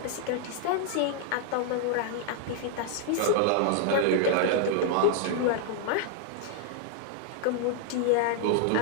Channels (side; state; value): both; different; correlation 0.00